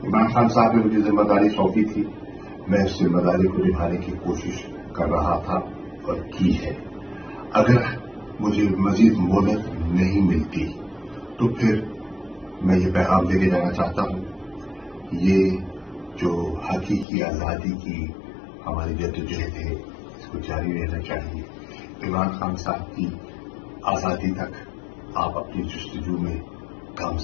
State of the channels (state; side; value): drops out; right; at 17.1 s